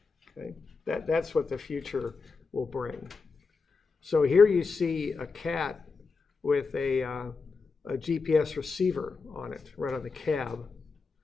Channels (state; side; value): quieter; right; 4.6 dB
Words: Okay? That's what the future will bring. So here you see a cat with a GPS receiver on it, right on the cab.